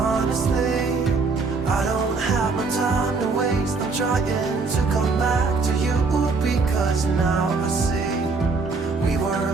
I don't have no time to waste. I'm trying to come back to you, because now I see we were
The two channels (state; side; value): quieter; left; 4.2 dB